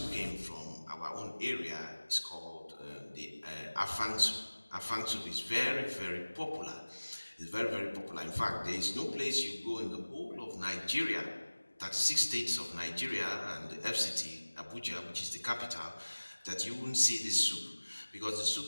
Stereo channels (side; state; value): both; inverted; correlation -1.00